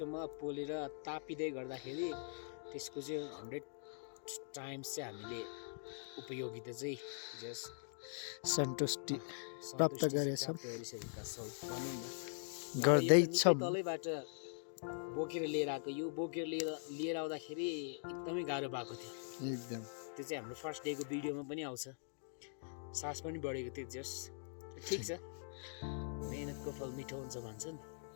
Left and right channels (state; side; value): silent; right; digital silence